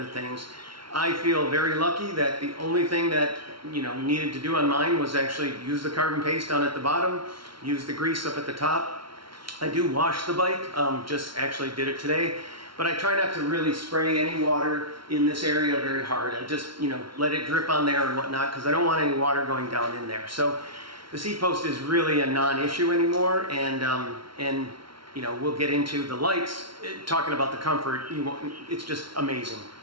things. I feel very lucky that the only thing that needed to do on mine was actually use the carbon paste down at the bottom, use the grease up at the top. I do wash the bike, just actually did it today, but I try not to really spray any water in this area very hard. I just let it drip on there and whatnot, because I don't want any water going down in there. So the seat post is really a non-issue anymore, and we'll get into the lights, talking about the comfort. It's just amazing.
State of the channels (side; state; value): left; late; 0.74 ms